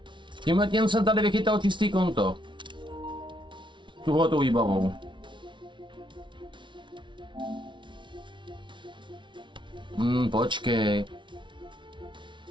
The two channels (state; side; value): late; left; 0.24 ms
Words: Tímhle tím jsem tady vychytal čistý konto. Tuhletou výbavou. Počkej.